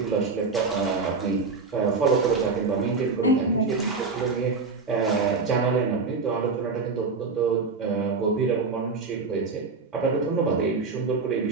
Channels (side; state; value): left; quieter; 4.4 dB